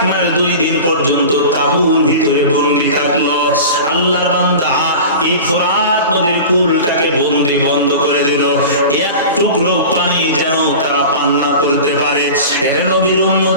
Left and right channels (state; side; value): inverted; both; correlation -0.34